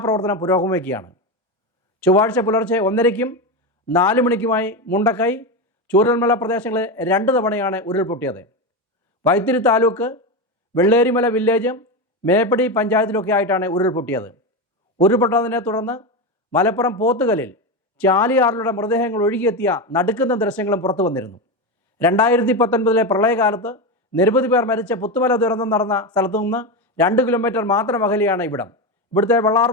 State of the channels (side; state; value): both; normal; correlation 0.16